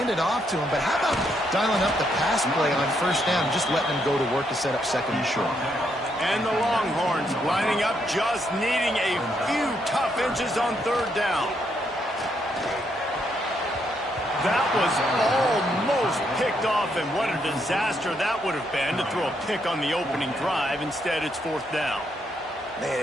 it off to him, but how about dialing up the pass play on first down and just letting him go to work to set up second and short? And the Longhorns lining up, just needing a few tough inches on third down. That was almost picked off, and what a disaster that would have been to throw a pick on the opening drive. Instead, it's fourth down.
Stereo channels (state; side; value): normal; both; correlation 0.76